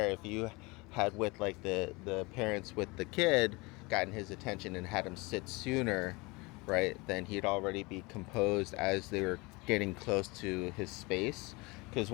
if you had with like the parents with the kid gotten his attention and had him sit sooner, right, then he'd already be composed as they were getting close to his space. Because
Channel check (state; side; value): quieter; right; 25.2 dB